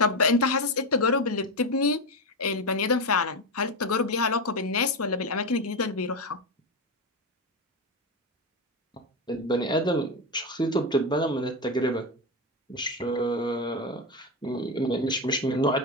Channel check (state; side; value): normal; both; correlation 0.13